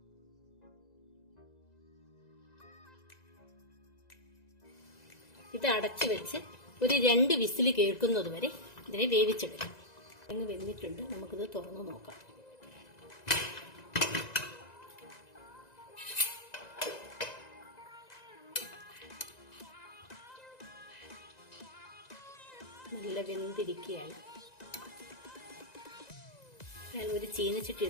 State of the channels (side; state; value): right; late; 1.9 ms